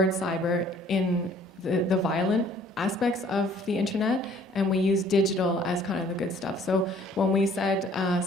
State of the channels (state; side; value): normal; both; correlation 0.57